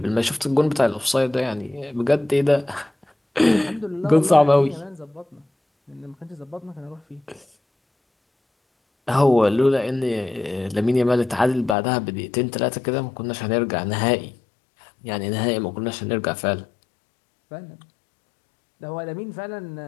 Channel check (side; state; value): right; drops out; at 11.8 s